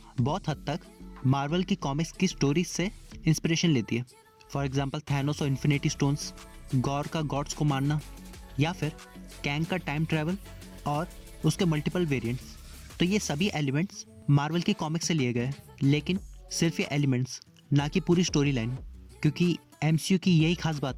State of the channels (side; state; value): both; identical; correlation 1.00